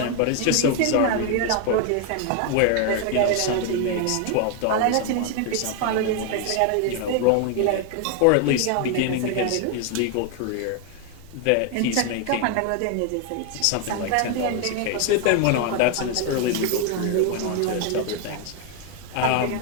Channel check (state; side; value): different; both; correlation 0.01